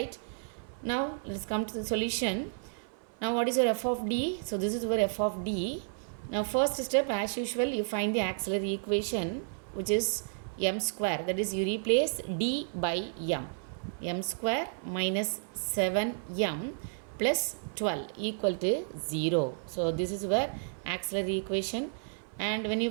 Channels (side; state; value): left; silent; 57 dB below the other